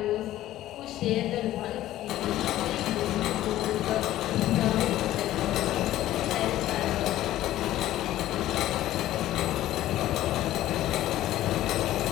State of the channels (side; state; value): right; quieter; 14.1 dB